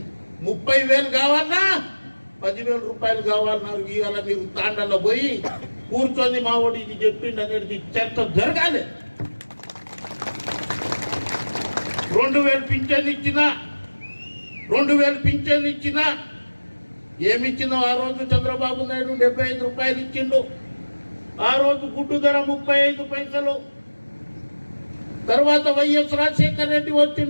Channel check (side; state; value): both; inverted; correlation -1.00